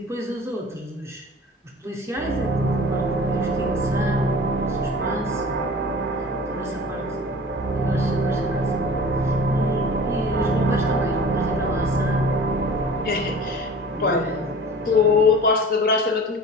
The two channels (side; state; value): both; normal; correlation 0.41